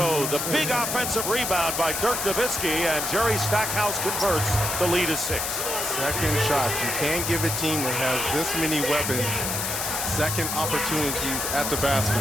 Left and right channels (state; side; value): noise; left; hiss, 2 dB below the sound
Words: the big offensive rebound by Dirk Nowitzki, and Jerry Stackhouse converts. The lead is 6. Second shot. You can't give a team that has this many weapons second opportunities at the basket.